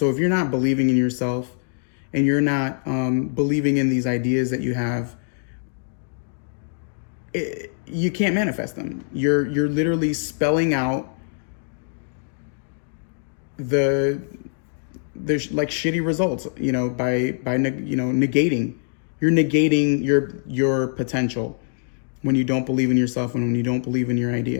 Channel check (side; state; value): right; silent; digital silence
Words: if you're not believing in yourself and you're not believing in these ideas that you have, you can't manifest them. You're literally spelling out the like shitty results, by negating. You're negating your potential when you don't believe in yourself and when you don't believe in your